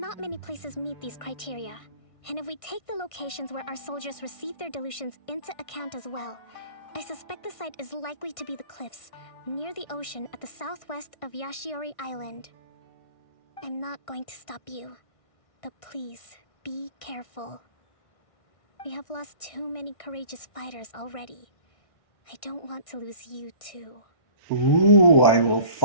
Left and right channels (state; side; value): late; right; 1.5 ms